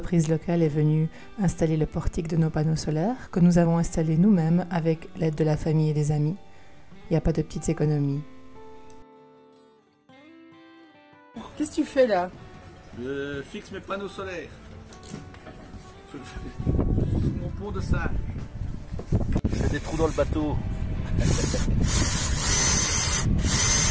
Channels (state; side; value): identical; both; correlation 1.00